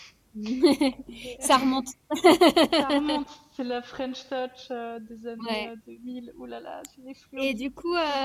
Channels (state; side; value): identical; both; correlation 1.00